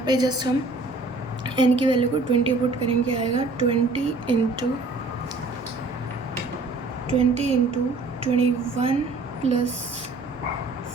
पे जस्ट हम एन की वैल्यू को 20 पुट करेंगे, आएगा 20 into 21 plus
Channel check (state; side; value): quieter; left; 3.4 dB